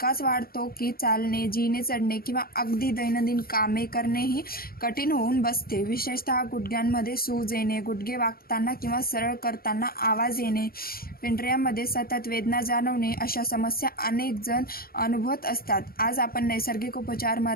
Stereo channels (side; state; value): right; late; 0.43 ms